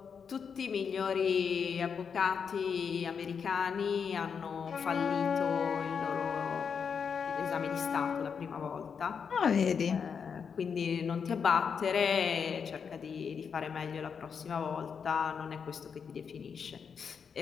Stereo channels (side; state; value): right; quieter; 6.5 dB